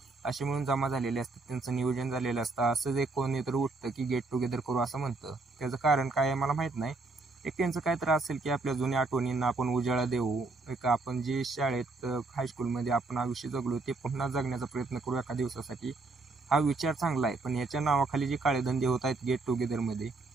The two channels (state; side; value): quieter; left; 3.5 dB